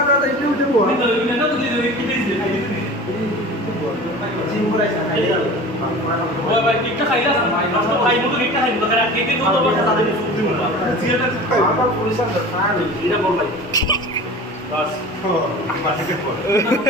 ভাই কেকটা খাইলা ভাই নষ্ট ভাই মতো কেকটা খাইনি তো কেন কেকে তো বড় কথা দিন সুপ দিমু না জিয়াটা আমার পুলিশের দরকার এটা বল ভাই বাস আমার থেকে পড়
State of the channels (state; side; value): normal; both; correlation 0.37